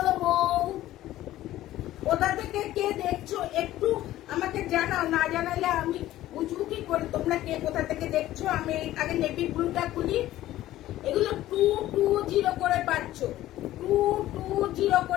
বউ, কোথা থেকে কে দেখছো একটু আমাকে জানাও, না জানালে আমি বুঝবো কি করে তোমরা কে কোথা থেকে দেখছো। আমি আগে নেভি ব্লুটা খুলি। এগুলো 220 করে পাচ্ছ, 220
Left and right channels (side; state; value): right; quieter; 14.6 dB